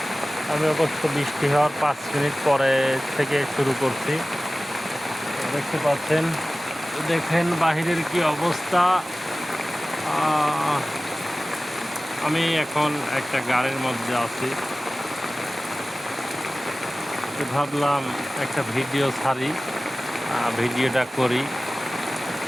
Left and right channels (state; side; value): normal; both; correlation 0.97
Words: আমি অবশ্য বৃষ্টি হওয়ার 5 মিনিট পরে থেকে শুরু করছি। দেখতে পাচ্ছেন, দেখেন বাহিরের কি অবস্থা। আমি এখন একটা গাড়ির মধ্যে আছি, ভাবলাম একটা ভিডিও ছাড়ি, ভিডিওটা করি।